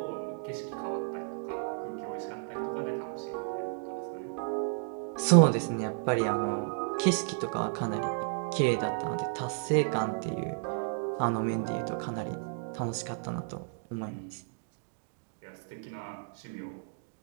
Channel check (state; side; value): silent; left; digital silence